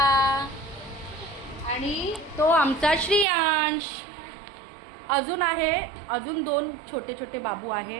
आणि तो आमचा श्रियांश. अजून दोन छोटे छोटे बाबू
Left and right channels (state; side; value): drops out; left; at 3.2 s